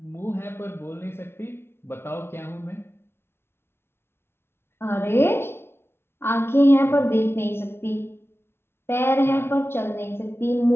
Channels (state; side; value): late; right; 0.12 ms